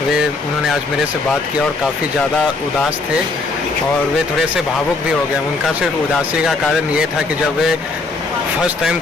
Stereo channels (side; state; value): right; quieter; 3.6 dB